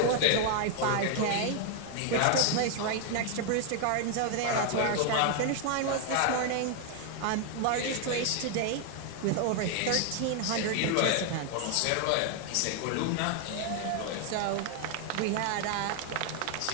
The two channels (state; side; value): different; both; correlation 0.00